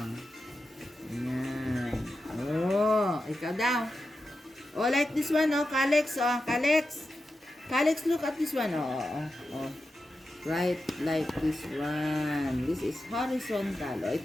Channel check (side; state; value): both; normal; correlation 0.90